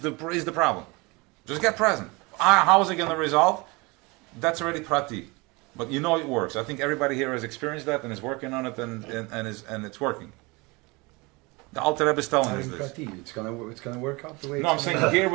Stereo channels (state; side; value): quieter; left; 25.9 dB